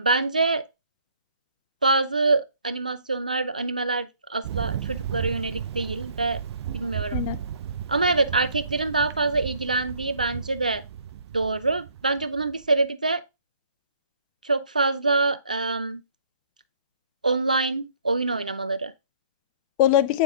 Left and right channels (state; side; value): inverted; both; correlation -0.60